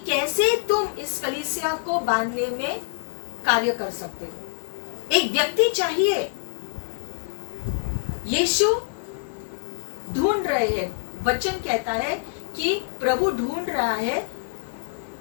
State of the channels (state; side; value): silent; right; 61 dB below the other